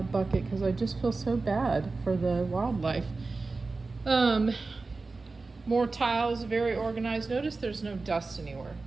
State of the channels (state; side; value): quieter; left; 3.8 dB